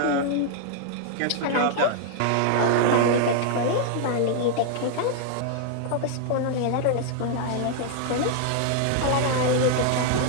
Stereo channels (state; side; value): different; both; correlation -0.01